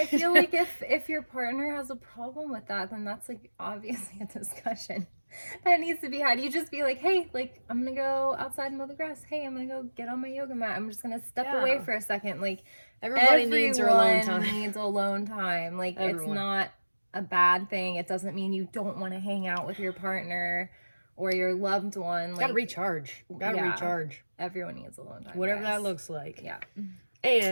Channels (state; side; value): inverted; both; correlation -1.00